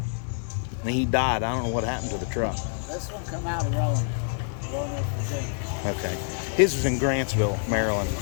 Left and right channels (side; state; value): right; silent; 57 dB below the other